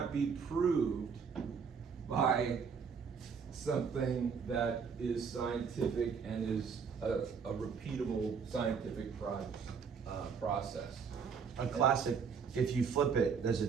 be proved by something that is scientific and is a repeatable scientific process. A classic, if you flip it, does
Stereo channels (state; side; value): quieter; left; 6.1 dB